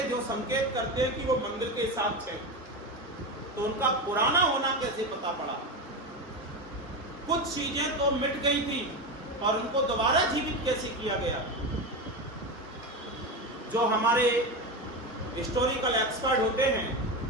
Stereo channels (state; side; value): normal; both; correlation 0.19